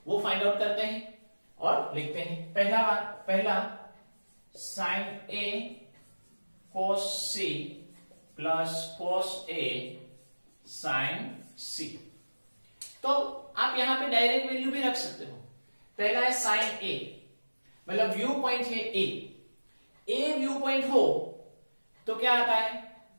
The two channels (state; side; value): inverted; both; correlation -1.00